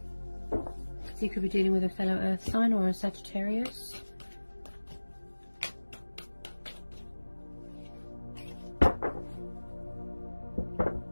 So you could be dealing with a fellow Earth sign or a Sagittarius.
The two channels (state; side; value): inverted; both; correlation -1.00